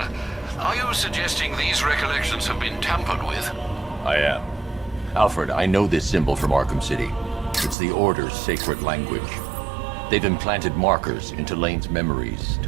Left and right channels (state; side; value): drops out; left; at 7.8 s